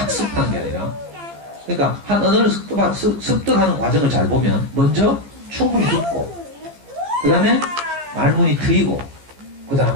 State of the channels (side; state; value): left; late; 15 ms